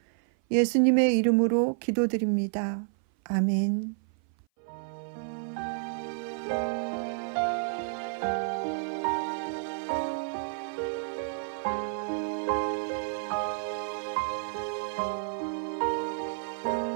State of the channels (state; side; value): silent; left; 56 dB below the other